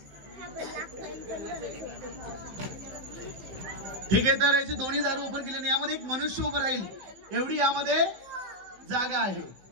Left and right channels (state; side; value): late; left; 15 ms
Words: ठीक आहे, तर याची दोन्ही दार ओपन केली। यामध्ये एक मनुष्य उभं राहील एवढी यामध्ये जागा आहे